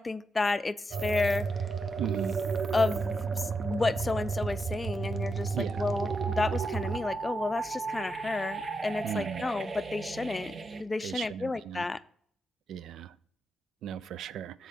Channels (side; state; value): both; normal; correlation 0.84